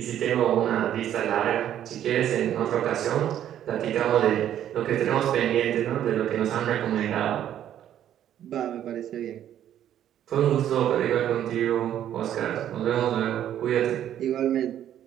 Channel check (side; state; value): left; quieter; 10.9 dB